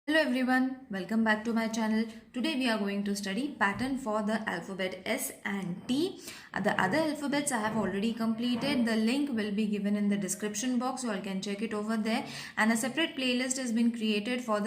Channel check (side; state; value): both; identical; correlation 1.00